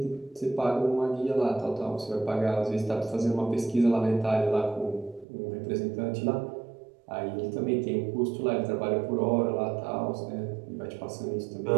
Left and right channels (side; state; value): left; drops out; at 5.2 s